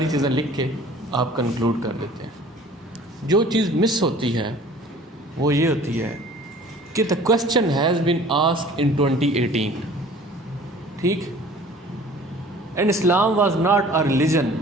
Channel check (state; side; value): normal; both; correlation 0.48